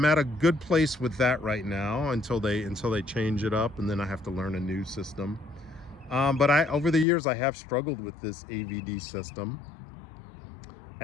at a good place with that right now until they change it up, and then I have to learn a new system. But over the years I have struggled with this AVD system,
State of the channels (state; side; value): drops out; right; at 7.1 s